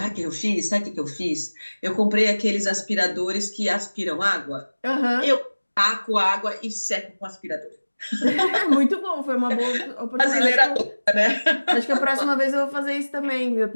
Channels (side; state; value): both; inverted; correlation -1.00